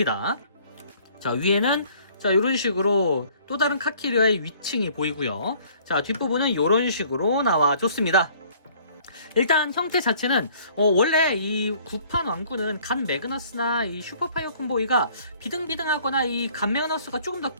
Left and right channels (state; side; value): inverted; both; correlation -0.57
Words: 자, 위에는 자, 이런 식으로 또 다른 카 캐리어의 위층이 보이고요. 자, 뒷부분은 이런 식으로 나와줬습니다. 일단 형태 자체는 원래 이 구판 왕구는 갓 매그너스나 이 슈퍼파이어 콤보이가 비등비등하거나 이 갓 매그너스가 조금 더